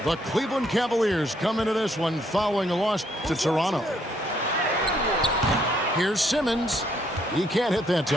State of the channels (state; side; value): normal; both; correlation 0.70